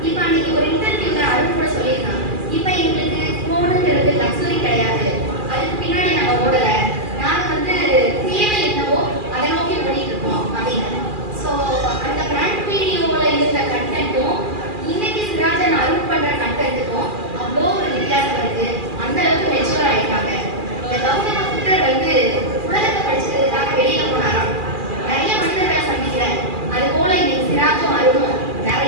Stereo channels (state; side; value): late; left; 2.4 ms